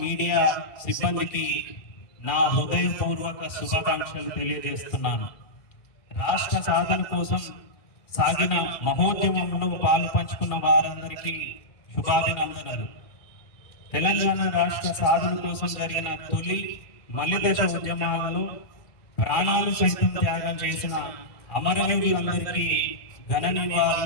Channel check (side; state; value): right; late; 2.4 ms